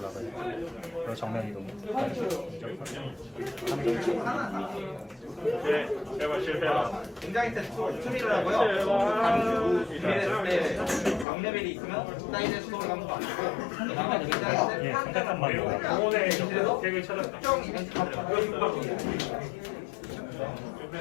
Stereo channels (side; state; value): right; drops out; at 11.2 s